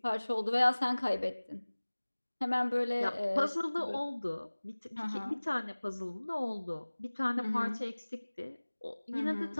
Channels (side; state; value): both; inverted; correlation -1.00